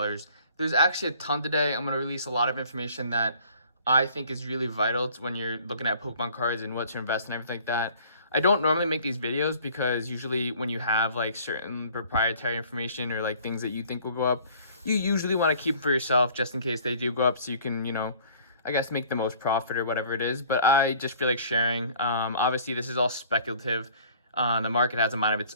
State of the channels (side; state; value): both; inverted; correlation -0.53